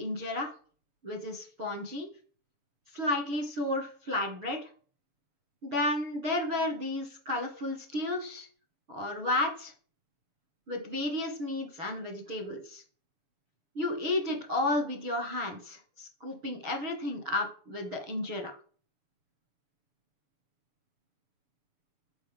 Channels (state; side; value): late; left; 7.0 ms